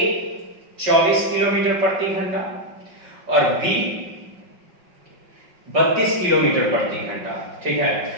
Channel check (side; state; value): left; late; 5.4 ms